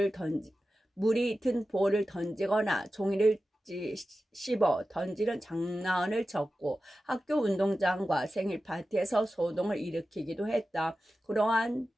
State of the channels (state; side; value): normal; both; correlation 0.93